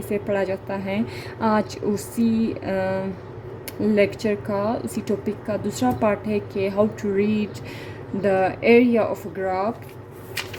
पढ़ा जाता है। आज उसी लेक्चर का, उसी टॉपिक का दूसरा पार्ट है कि how to read the area of graph.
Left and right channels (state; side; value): identical; both; correlation 1.00